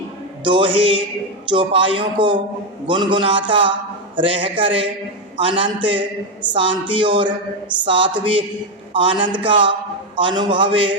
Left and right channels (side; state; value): both; normal; correlation 0.07